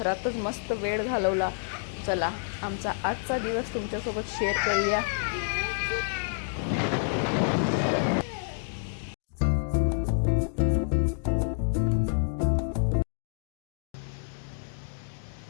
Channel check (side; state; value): right; silent; digital silence